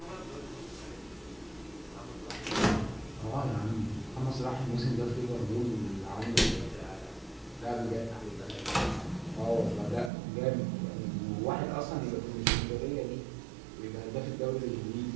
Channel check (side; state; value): left; drops out; at 10.1 s